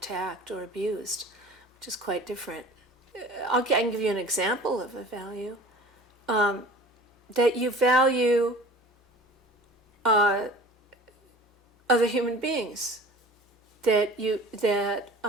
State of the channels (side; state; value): both; normal; correlation 0.43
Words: or abused, which is quite different. I can give you an example of a value, that you value other human beings. That